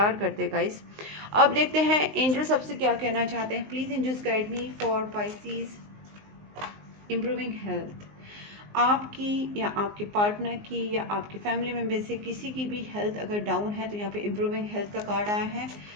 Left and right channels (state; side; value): late; left; 19 ms